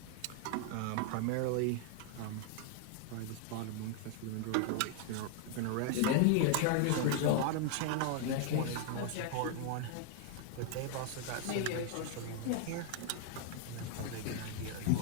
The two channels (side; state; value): both; different; correlation 0.00